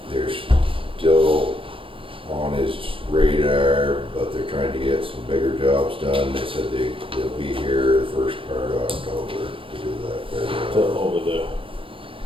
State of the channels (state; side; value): late; left; 0.25 ms